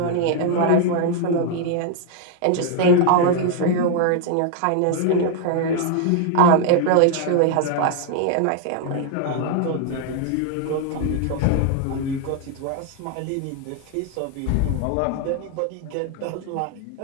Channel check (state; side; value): different; both; correlation 0.00